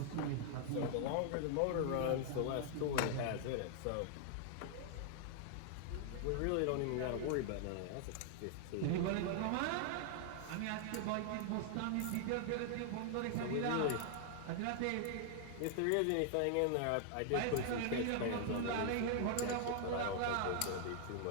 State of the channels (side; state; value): both; different; correlation 0.00